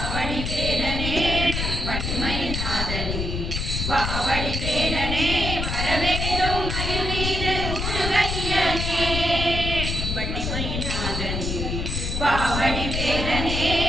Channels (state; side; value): noise; left; rumble, 2 dB below the sound